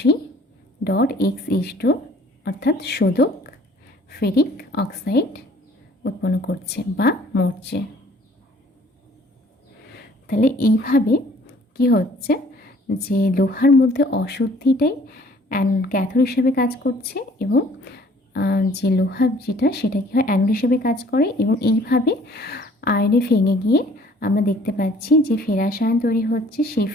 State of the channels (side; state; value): both; normal; correlation 0.55